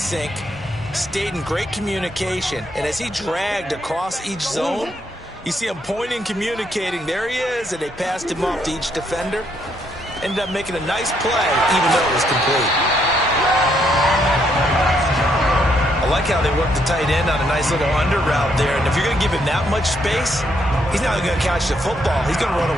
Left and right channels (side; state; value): both; normal; correlation 0.73